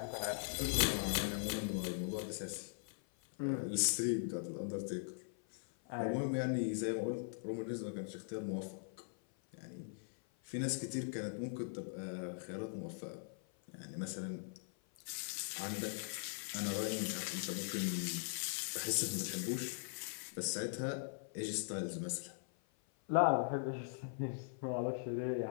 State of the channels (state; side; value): silent; right; 50 dB below the other